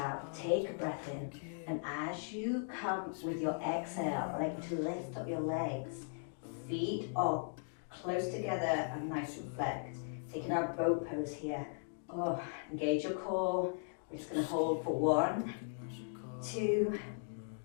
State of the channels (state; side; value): silent; right; digital silence